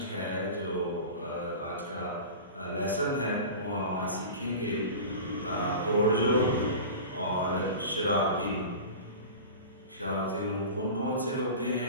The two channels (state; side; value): inverted; both; correlation -0.33